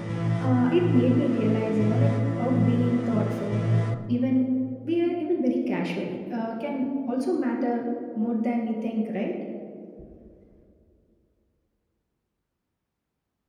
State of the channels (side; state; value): both; identical; correlation 1.00